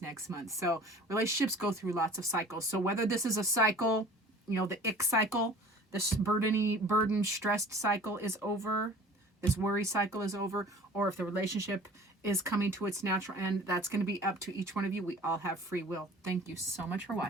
next month. So relationships go through lots of cycles. So whether this is a cycle, the ick cycle, this burden, stressed cycle is over, this worry cycle is over, or if the relationship is coming to its natural end, that's going to be up to each one of you. We all have free will. Thank you so much for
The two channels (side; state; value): both; normal; correlation 0.46